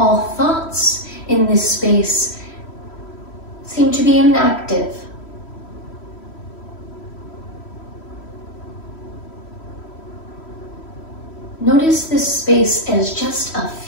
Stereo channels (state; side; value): late; right; 3.1 ms